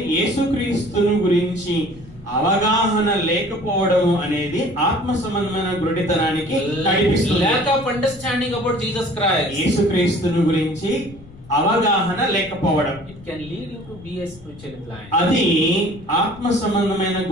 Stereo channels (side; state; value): left; noise; rumble, 21 dB below the sound